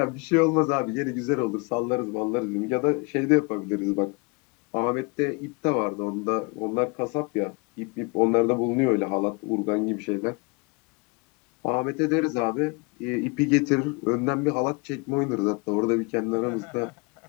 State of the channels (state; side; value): quieter; right; 29.9 dB